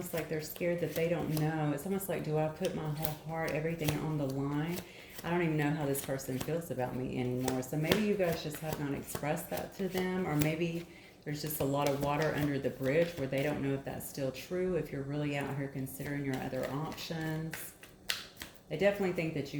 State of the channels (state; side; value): identical; both; correlation 1.00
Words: like they're scared that they don't know. It's almost like, do I put my whole heart, everything on the line? I don't even know how this person feels about me anymore. So maybe you guys just have not expressed that to them, or maybe there's just a lot of water under the bridge where they don't know if that's still true, if you're really out here considering your other options. They definitely think that